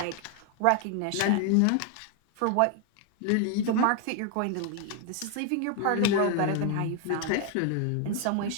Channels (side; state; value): both; different; correlation 0.00